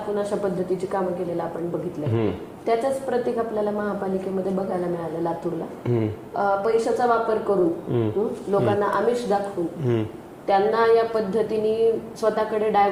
अशा पद्धतीची कामं केलेलं आपण बघितलं. त्याचंच प्रतीक आपल्याला महापालिकेमध्ये बघायला मिळालं. लातूरला पैशाचा वापर करून लोकांना आमिष दाखवून त्यांना या पद्धतीने स्वतःकडे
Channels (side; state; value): both; identical; correlation 1.00